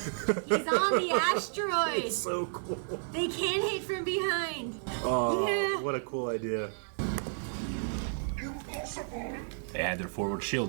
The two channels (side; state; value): left; silent; digital silence